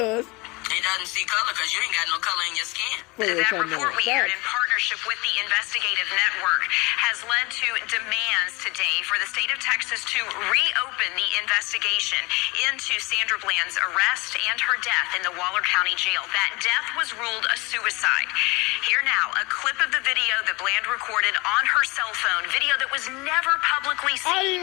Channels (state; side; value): quieter; right; 24.9 dB